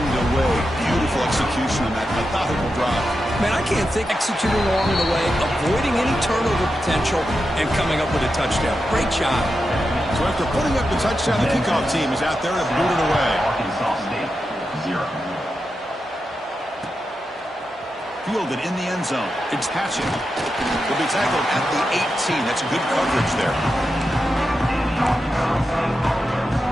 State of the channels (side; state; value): both; normal; correlation 0.88